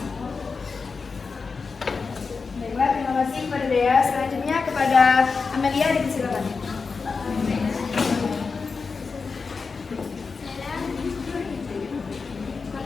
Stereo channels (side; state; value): right; quieter; 4.8 dB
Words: Baiklah, terima kasih kepada Dea. Selanjutnya kepada Amelia, dipersilakan.